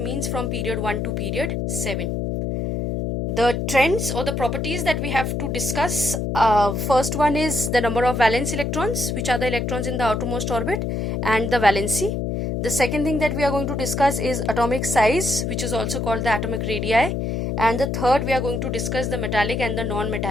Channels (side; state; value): left; noise; hum, 1 dB below the sound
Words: from period 1 to period 7. The trends or the properties that we have to discuss, first one is the number of valence electrons, which are the electrons in the outermost orbit, and the valency. The second thing that we are going to discuss is atomic size, which is also called the atomic radii, and the third we are going to discuss the metallic and the